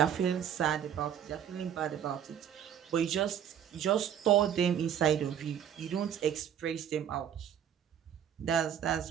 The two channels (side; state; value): left; quieter; 9.3 dB